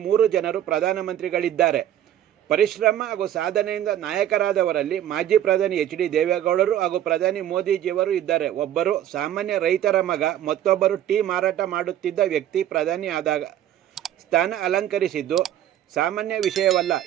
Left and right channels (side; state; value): left; quieter; 11.5 dB